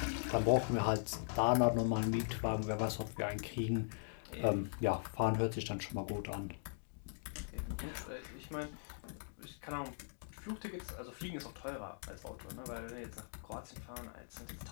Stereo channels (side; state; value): right; silent; digital silence